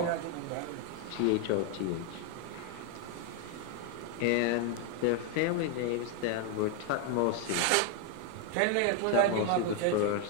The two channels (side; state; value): both; different; correlation 0.01